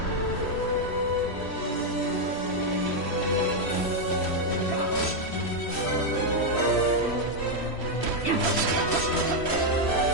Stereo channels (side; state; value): right; late; 3.1 ms